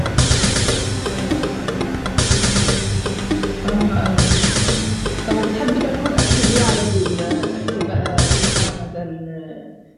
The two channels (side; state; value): both; identical; correlation 1.00